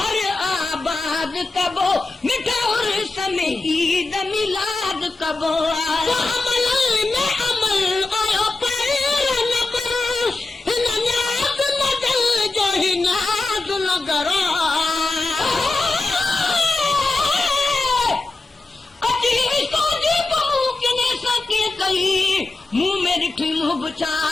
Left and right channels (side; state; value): right; quieter; 3.3 dB